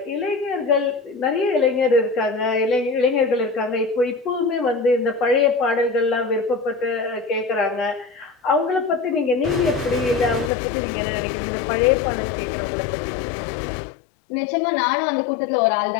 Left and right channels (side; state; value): right; drops out; at 10.5 s